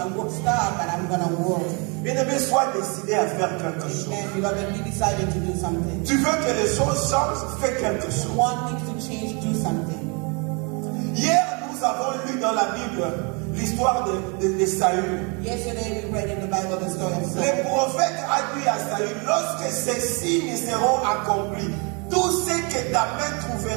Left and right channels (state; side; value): quieter; left; 32.4 dB